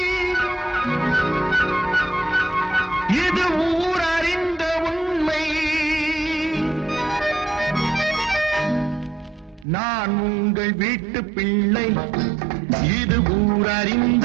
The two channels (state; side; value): drops out; left; at 9.7 s